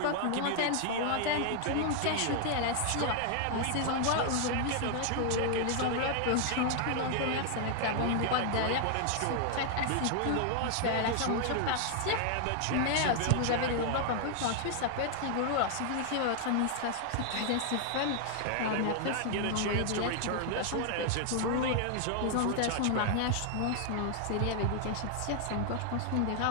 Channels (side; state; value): both; different; correlation 0.00